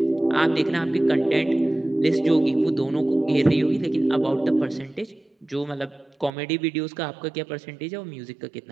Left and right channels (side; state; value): left; drops out; at 6.3 s